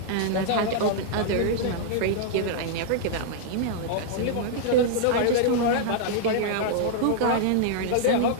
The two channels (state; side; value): different; both; correlation -0.01